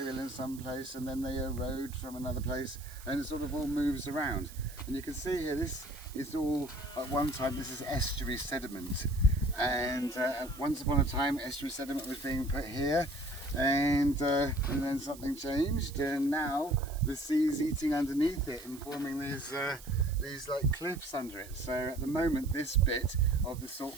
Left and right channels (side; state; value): right; noise; hiss, 18 dB below the sound